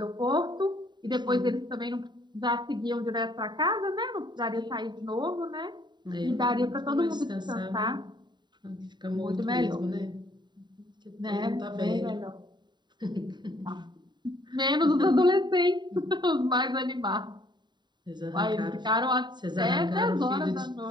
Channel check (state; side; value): late; left; 0.21 ms